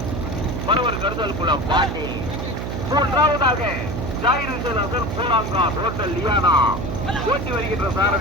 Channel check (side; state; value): right; noise; hum, 4 dB below the sound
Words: மறுவர் கருதல் குளம் பாண்டி. 3வது ஜாகிர் ஹுசேன் அசர் போலாங்கா ஹோட்டல் லியானா ஓட்டி வருகின்ற